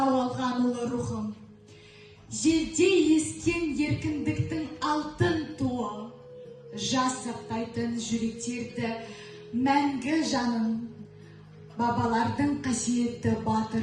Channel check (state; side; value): identical; both; correlation 1.00